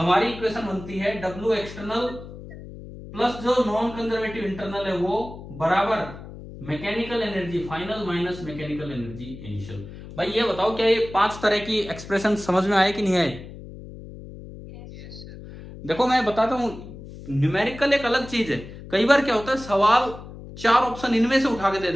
हमारी इक्वेशन बनती है डब्ल्यू एक्सटर्नल प्लस जो नॉन कंजर्वेटिव इंटरनल है वो बराबर mechanical energy final minus mechanical energy initial. भाई ये बताओ, क्या ये पांच तरह की एक्सप्रेशन समझ में आए कि नहीं आए? Yes sir. देखो मैं बताता हूं, न्यूमेरिकल एक अलग चीज है। कई बार क्या होता है, सवाल चार ऑप्शन इनमें से उठा के दे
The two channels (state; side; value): noise; left; hum, 14 dB below the sound